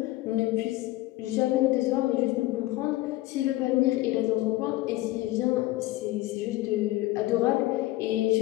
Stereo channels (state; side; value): quieter; right; 17.7 dB